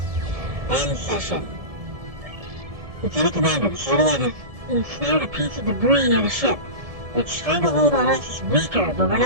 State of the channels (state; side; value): late; left; 1.7 ms